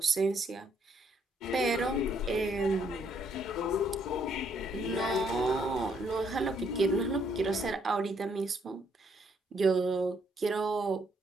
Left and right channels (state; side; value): normal; both; correlation 0.70